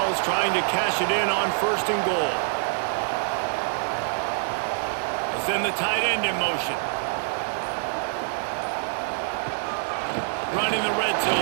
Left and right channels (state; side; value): silent; left; digital silence